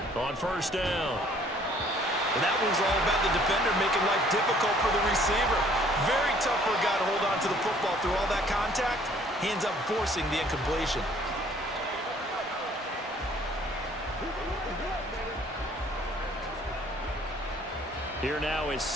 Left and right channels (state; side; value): normal; both; correlation 0.58